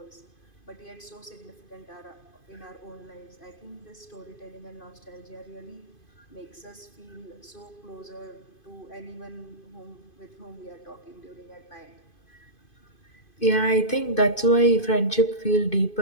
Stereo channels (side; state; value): right; late; 2.5 ms